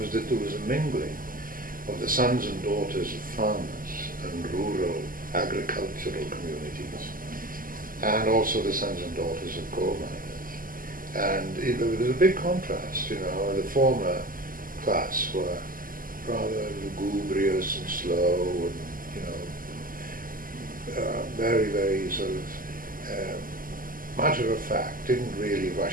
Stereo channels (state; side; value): late; left; 0.41 ms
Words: that there was a mingling of the sons and daughters of farmers and rural agricultural communities, and also the sons and daughters of coal miners. And there was a big contrast, the former class were rather lugubrious and slow and, very, very sort of matter of fact, didn't really